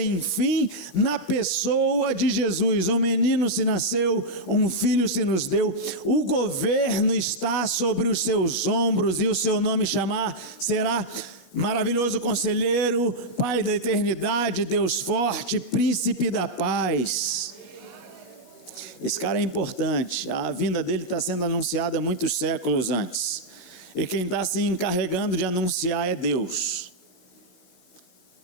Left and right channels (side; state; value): right; late; 16 ms